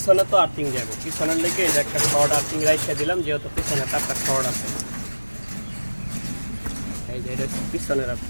তো আর্থিং যাবে, পিছনের লেগে এই যে একটা শর্ট আর্থিং রাইখে দিলাম, যেহেতু পিছনে তারটা শর্ট আছে। এই যে এটা হচ্ছে পিছনের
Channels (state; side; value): inverted; both; correlation -1.00